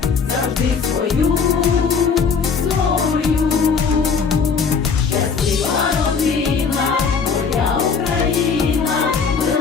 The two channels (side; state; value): right; quieter; 5.6 dB